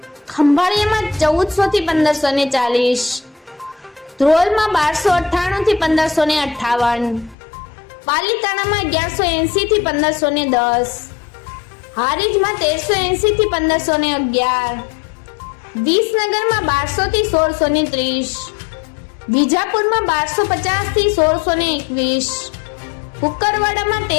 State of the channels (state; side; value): drops out; right; at 7.4 s